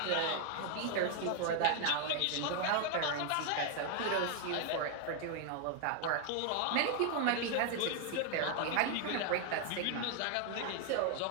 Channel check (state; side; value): different; both; correlation 0.00